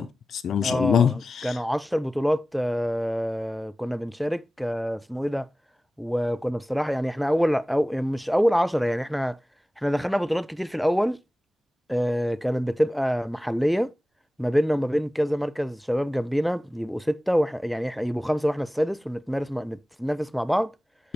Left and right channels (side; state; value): both; normal; correlation 0.96